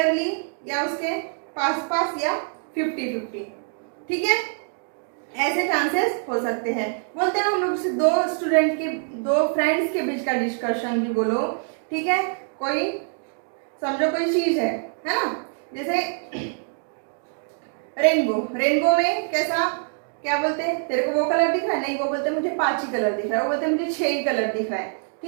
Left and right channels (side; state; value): left; silent; 55 dB below the other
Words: या उसके पास या 50-50। ठीक है, ऐसे चांसेस हो सकते हैं। बोलते हैं ना हम लोग से दो फ्रेंड्स के बीच का डिस्कशन भी बोलो। ठीक है, कोई समझो कोई चीज है ना, जैसे रेनबो में कैसा क्या बोलते हैं, तेरे को वो कलर दिख रहा है, नहीं वो बोलते हैं मुझे 5 ही कलर दिख रहा है, वो बोलते हैं मुझे 6 ही कलर दिख रहा है।